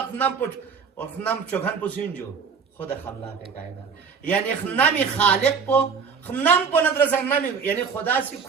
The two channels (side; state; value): left; quieter; 5.9 dB